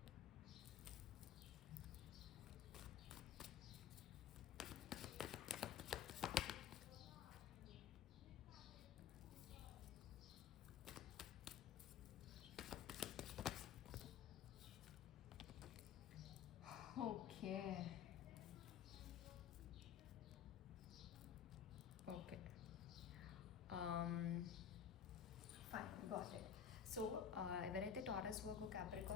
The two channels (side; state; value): right; quieter; 8.4 dB